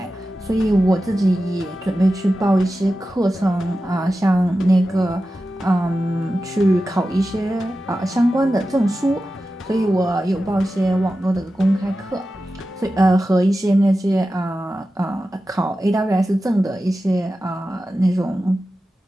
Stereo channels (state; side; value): normal; both; correlation 0.93